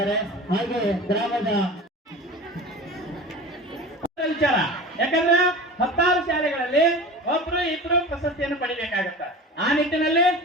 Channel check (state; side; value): normal; both; correlation 0.35